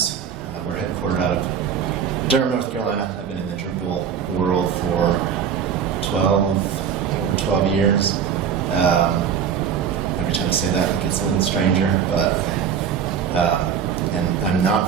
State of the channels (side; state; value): left; quieter; 7.7 dB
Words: We're headquartered out of Durham, North Carolina. I've been in the Drupal world for over 12 years. Every time I say that, it gets a little stranger, but and I'm not